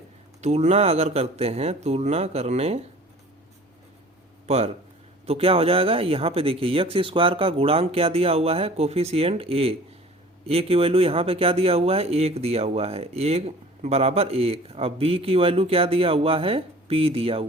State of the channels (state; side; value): normal; both; correlation 0.46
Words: तुलना अगर करते हैं, तुलना करने पर तो क्या हो जाएगा? यहाँ पे देखिए, एक्स स्क्वायर का गुणांक क्या दिया हुआ है? कोफिशिएंट ए की वैल्यू यहाँ पे क्या दिया हुआ है? 1 दिया हुआ है, 1 बराबर 1। अब बी की वैल्यू क्या दिया हुआ है? पी दिया